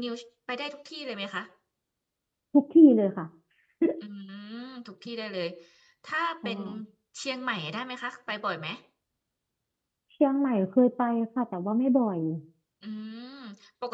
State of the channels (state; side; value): identical; both; correlation 1.00